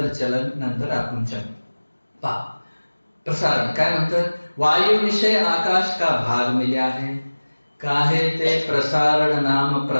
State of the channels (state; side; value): inverted; both; correlation -1.00